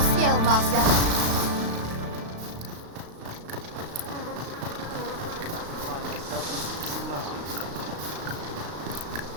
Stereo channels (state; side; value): late; left; 35 ms